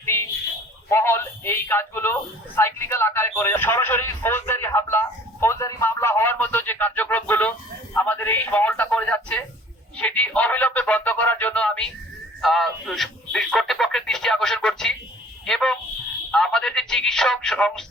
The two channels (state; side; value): normal; both; correlation 0.51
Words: মহল এই কাজগুলো সাইক্লিক্যাল আকারে করে সরাসরি ফৌজদারি হামলা, ফৌজদারি মামলা হওয়ার মতো যে কার্যক্রমগুলো আমাদের এই মহলটা করে যাচ্ছে, সেটি অবিলম্বে বন্ধ করার জন্য আমি কর্তৃপক্ষের দৃষ্টি আকর্ষণ করছি। এবং আমাদের যে চিকিৎসক